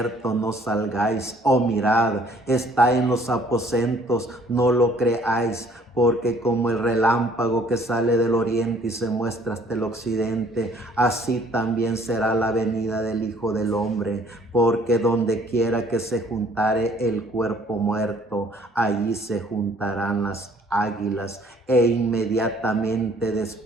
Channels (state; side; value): normal; both; correlation 0.58